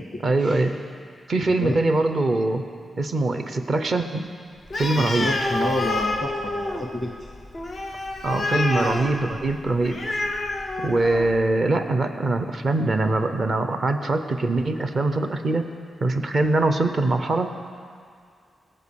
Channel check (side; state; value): both; normal; correlation 0.87